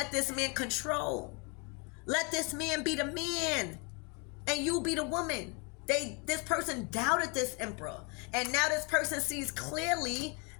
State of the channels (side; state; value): right; quieter; 31.1 dB